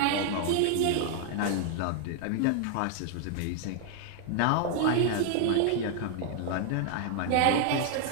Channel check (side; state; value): both; different; correlation 0.00